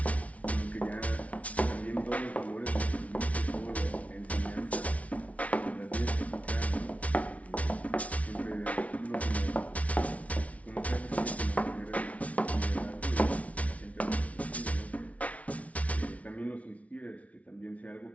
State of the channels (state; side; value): late; right; 0.067 ms